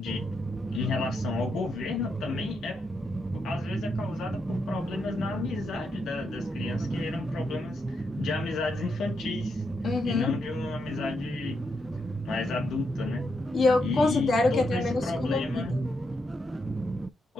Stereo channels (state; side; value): normal; both; correlation 0.82